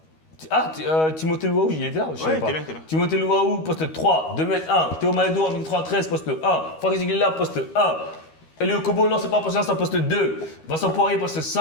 Ah, Timothée Louaou, il est là, je savais pas. Il est là. Timothée Louaou, poste 3, 2m1. Théo Malédo, 1m93, poste 1. Farid Ziguila, poste 1. Elio Kobo, non, c'est pas poste 1, c'est un poste 2. Vincent Poirier, poste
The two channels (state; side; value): late; right; 13 ms